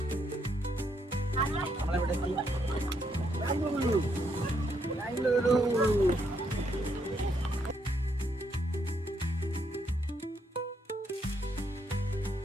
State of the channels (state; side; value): normal; both; correlation 0.75